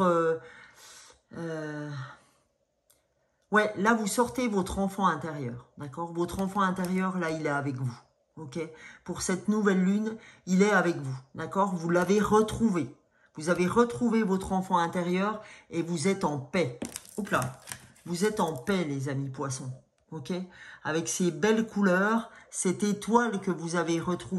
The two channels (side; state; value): both; identical; correlation 1.00